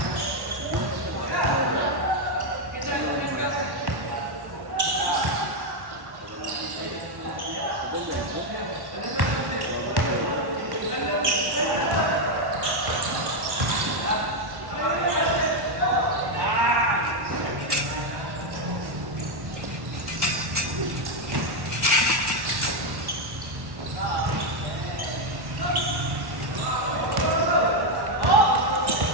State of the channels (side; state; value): left; late; 1.1 ms